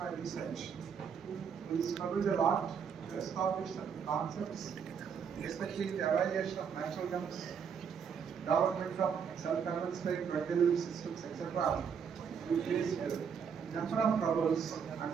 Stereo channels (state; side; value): quieter; left; 6.9 dB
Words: research, we struggled a lot to establish some concepts, especially the evaluation of natural chemicals, development of self-administering drug delivery systems, etc. We faced a number of troubles,